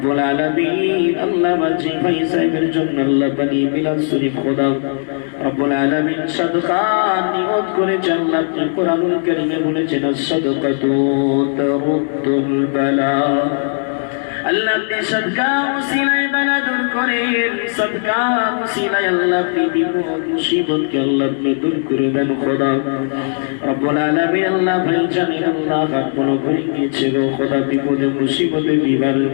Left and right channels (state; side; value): silent; right; digital silence